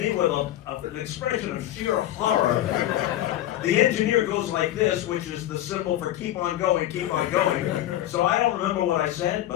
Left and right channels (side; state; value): right; quieter; 13.6 dB